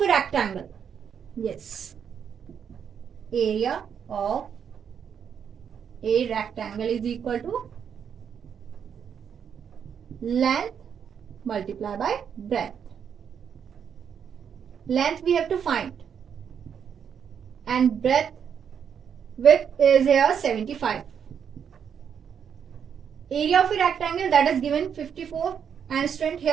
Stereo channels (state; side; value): quieter; left; 7.7 dB